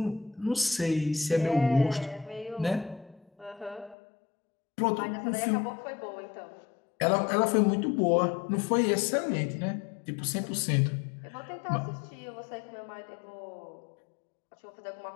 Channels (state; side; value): drops out; right; at 4.0 s